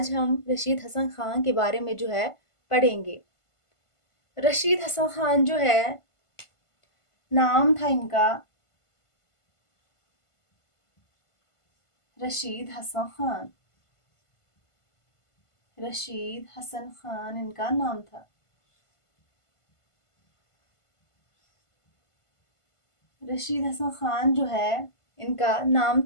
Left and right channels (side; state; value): right; late; 1.5 ms